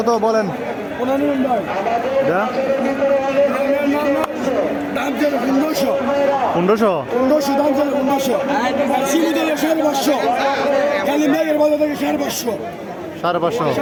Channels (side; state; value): both; identical; correlation 1.00